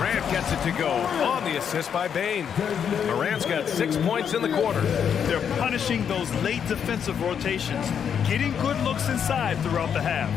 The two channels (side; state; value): right; quieter; 7.9 dB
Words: gets it to go on the assist by Bain. Morant's got 6 points in the quarter. They're punishing those late defensive rotations, getting good looks inside throughout the half.